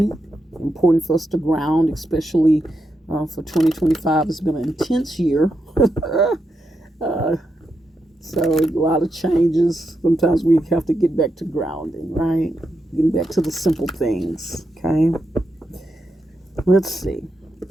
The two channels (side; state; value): both; normal; correlation 0.84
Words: Important for us to ground, especially for 2025. It's been an intense year. So a lot of changes. Sometimes we have to get back to grounding, right? Getting back to the simple things, okay? Let's see.